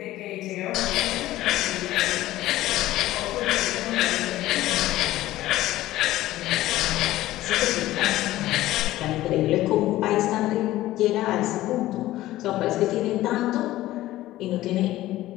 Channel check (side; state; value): right; quieter; 15.7 dB